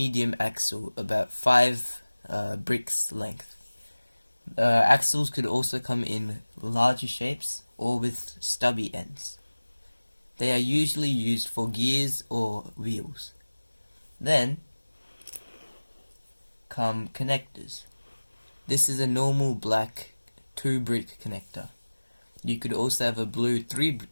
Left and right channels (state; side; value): inverted; both; correlation -1.00